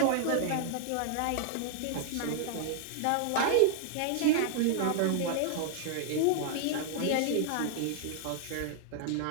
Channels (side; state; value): both; different; correlation 0.00